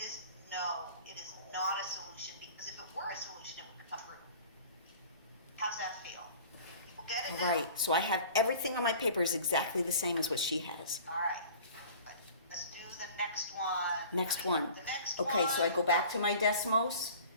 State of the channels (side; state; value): both; inverted; correlation -0.45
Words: no, it is not a solution, because if it were a solution, it would come get it now? Right, so I have everything on my paper is exactly the same as what she has. All right. Let's do the next one. Next one. The next Okay, one. so I go back to my Desmos,